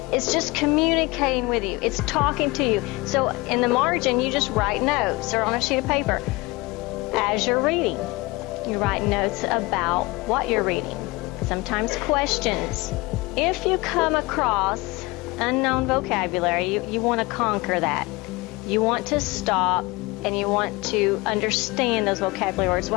it's just communicating with you. It's talking to you. So in the margin, you just write notes or on a sheet of paper. As you're reading, you write notes about what you're reading. Sometimes questions. If you come across unknown vocabulary, you want to conquer that. You want to stop and you want to understand those vocabulary words.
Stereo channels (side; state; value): right; quieter; 23.0 dB